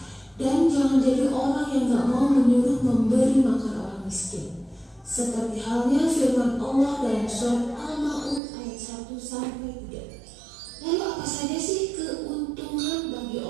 Dan jangan jadi orang yang gak mau menyuruh memberi makan orang miskin. Seperti halnya firman Allah dalam surat Al-Ma'un ayat 1-3. Lalu apa saja sih keuntungan bagi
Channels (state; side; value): drops out; left; at 8.4 s